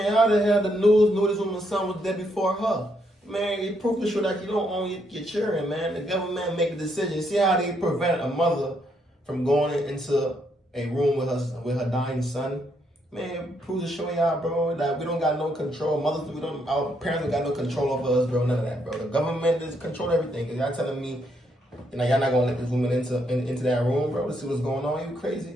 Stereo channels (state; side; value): normal; both; correlation 0.75